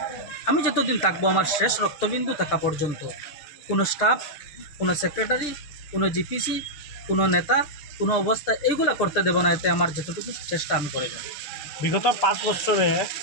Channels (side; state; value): right; late; 6.8 ms